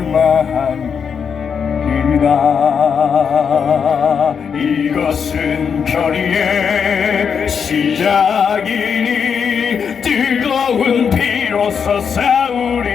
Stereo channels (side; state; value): right; quieter; 6.7 dB